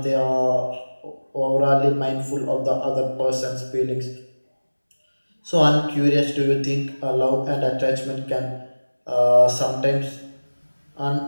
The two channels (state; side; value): inverted; both; correlation -1.00